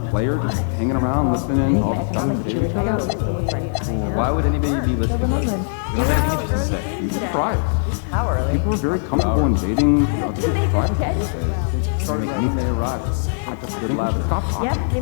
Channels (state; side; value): silent; right; digital silence